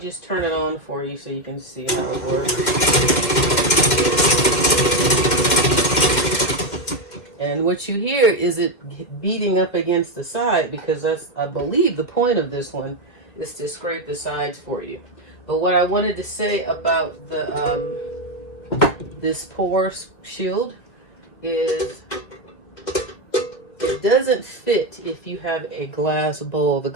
turn it on for you so you can see how it works. And what you hear is it beating up against the side, because that's, I believe, the point of this one is to scrape the sides for you. But what I wanted to say about the this pour shield is it doesn't fit if you have a glass bowl. The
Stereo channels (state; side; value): late; right; 2.5 ms